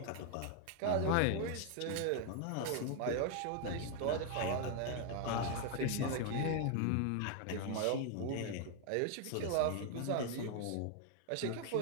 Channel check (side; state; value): both; different; correlation 0.00